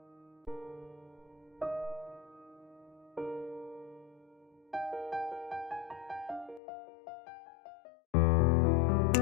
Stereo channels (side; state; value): right; drops out; at 6.6 s